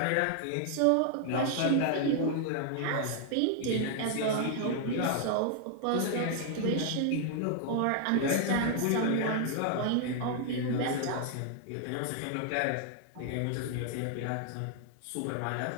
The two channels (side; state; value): both; different; correlation 0.00